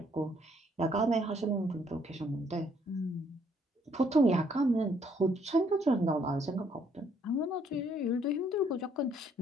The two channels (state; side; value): normal; both; correlation 0.67